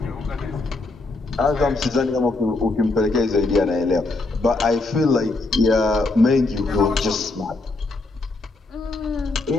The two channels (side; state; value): right; quieter; 3.3 dB